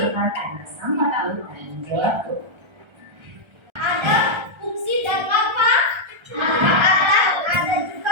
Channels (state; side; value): late; left; 1.3 ms